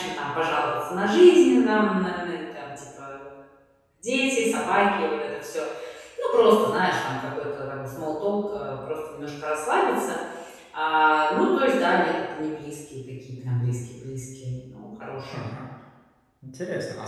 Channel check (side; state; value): both; identical; correlation 1.00